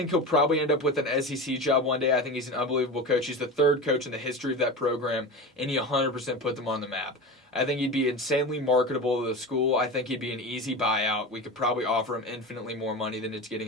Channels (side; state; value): both; normal; correlation 0.27